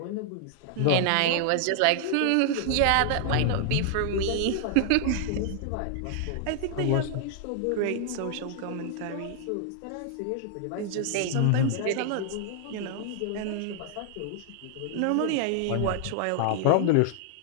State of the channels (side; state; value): both; different; correlation -0.01